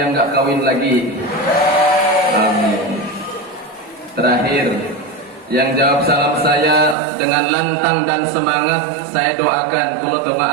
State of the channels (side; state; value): left; drops out; at 7.0 s